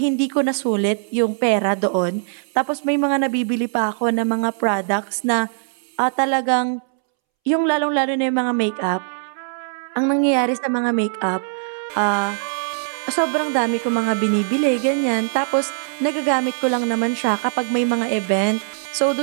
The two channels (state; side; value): silent; left; 65 dB below the other